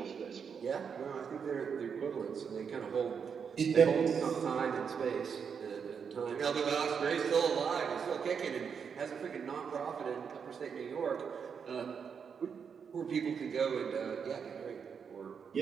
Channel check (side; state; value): left; quieter; 6.6 dB